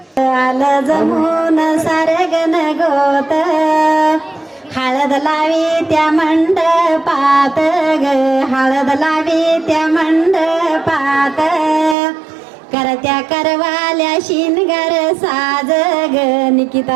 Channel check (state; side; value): drops out; left; at 12.0 s